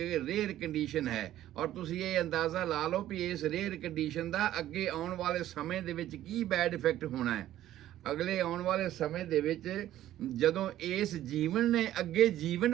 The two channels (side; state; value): left; quieter; 13.1 dB